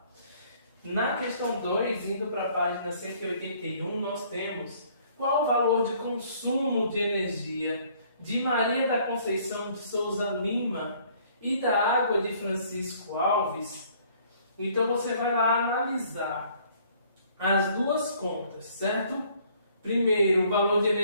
Na questão 2, indo para a página 181, nós temos qual o valor de consumo de energia de Maria da Conceição de Souza Lima e da água de Francisco Alves. Então você vai lá analisar as duas contas, certo? Primeiro, o valor de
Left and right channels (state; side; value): inverted; both; correlation -0.60